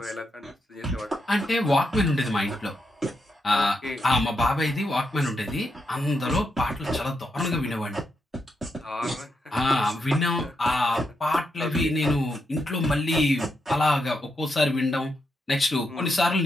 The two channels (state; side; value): normal; both; correlation 0.83